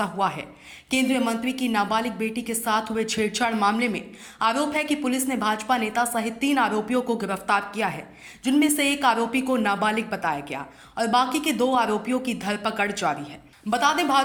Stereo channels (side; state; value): both; identical; correlation 1.00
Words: हुआ है। केंद्रीय मंत्री की नाबालिग बेटी के साथ हुए छेड़छाड़ मामले में आरोप है कि पुलिस ने भाजपा नेता सहित 3 आरोपियों को गिरफ्तार किया है, जिनमें से एक आरोपी को नाबालिग बताया गया और बाकी के 2 आरोपियों की धरपकड़ जारी है। बता दें,